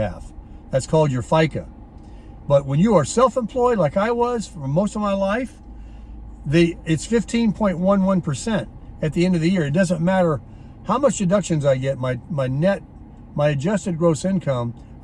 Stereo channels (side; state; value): both; identical; correlation 1.00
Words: That's called your FICA. But when you are self-employed, like I was for most of my life, it's 15.11% at the end of the year. It doesn't matter how much deductions I get, my adjusted gross income,